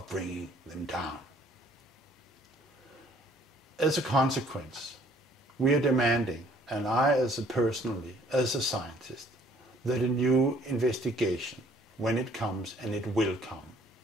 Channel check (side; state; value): both; normal; correlation 0.59